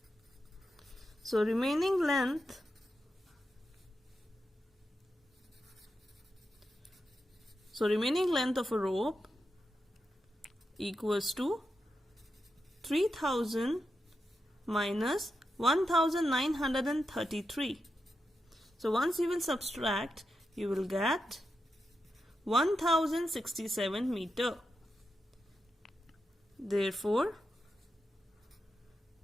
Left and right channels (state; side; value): normal; both; correlation 0.87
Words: So remaining length of a rope equals to 3000 minus 1933. So once you will subtract, you will get 1067 meter. Therefore,